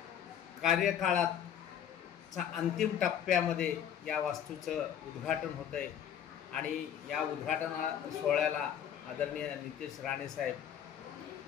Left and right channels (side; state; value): right; quieter; 9.3 dB